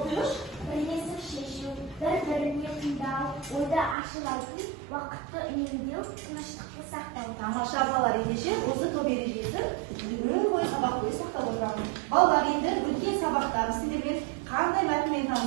оқиғыш. Бірлесіп шешу, бір-біріне тыңдау, ойды ашып айту, уақытты үнемдеу, тыныштықты сақтау. Тамаша балалар, ендеше осы топ ережесін күн бойы сабақ бойы сақтап отырамын. Балалар, енді өткен сабақтар сіздермен қандай мәтінмен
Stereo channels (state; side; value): drops out; left; at 4.0 s